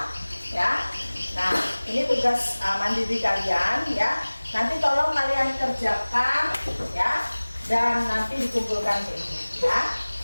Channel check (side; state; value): both; inverted; correlation -1.00